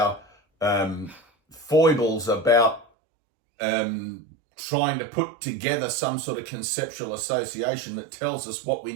foibles about trying to put together some sort of conceptual association that tells us what we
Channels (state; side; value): drops out; left; at 2.9 s